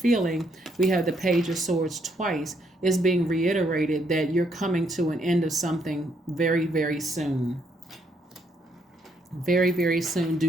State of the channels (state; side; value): normal; both; correlation 0.73